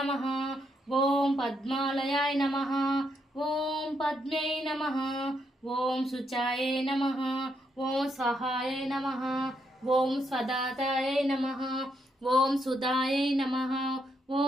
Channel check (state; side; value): normal; both; correlation 0.78